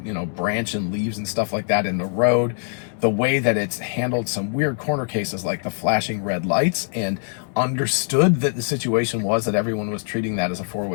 branch and leaves and stuff like that in the road, the way that it's handled some weird corner cases like the flashing red lights, and understood that the situation was that everyone was treating that as a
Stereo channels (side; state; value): right; silent; 64 dB below the other